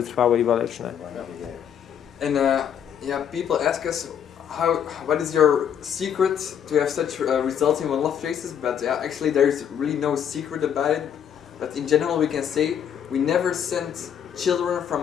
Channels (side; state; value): right; quieter; 8.7 dB